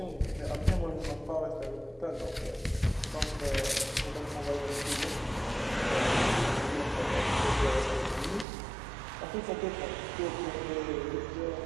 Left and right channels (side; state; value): left; drops out; at 8.5 s